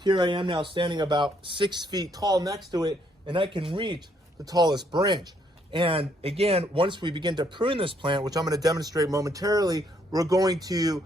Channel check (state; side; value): normal; both; correlation 0.70